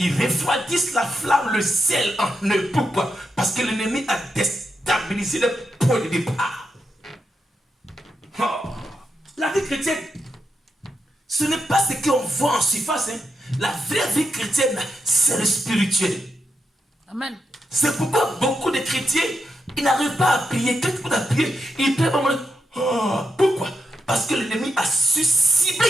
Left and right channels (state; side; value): normal; both; correlation 0.84